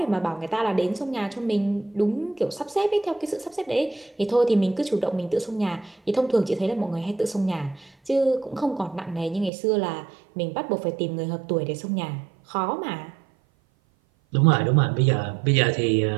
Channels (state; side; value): drops out; left; at 9.5 s